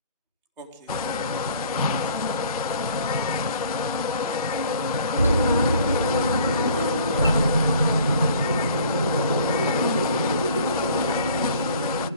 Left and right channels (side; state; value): both; inverted; correlation -0.54